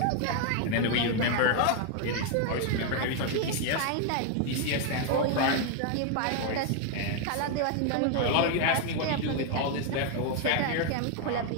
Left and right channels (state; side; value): different; both; correlation 0.01